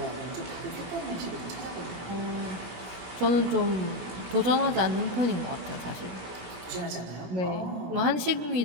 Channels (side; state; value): left; late; 16 ms